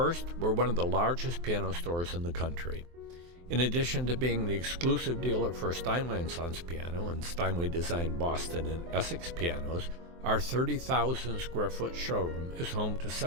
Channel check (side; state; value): left; late; 23 ms